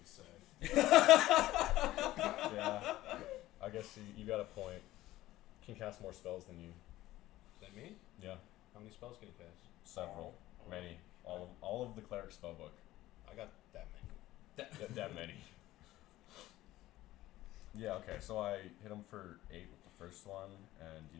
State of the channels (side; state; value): right; quieter; 16.0 dB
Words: say. Yeah. I guess you got a point. Can cast more spells than you. Is that me? Yeah. How many spells can you cast? Several. Many. All of the cleric spellbook. I got that many. That many. Yeah, okay, so I hit him for 8 with the first one, and